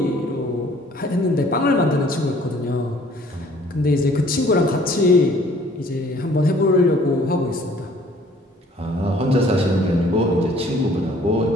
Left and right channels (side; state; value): both; normal; correlation 0.56